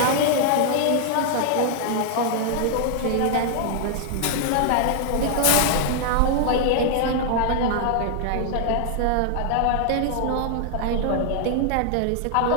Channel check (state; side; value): different; both; correlation 0.00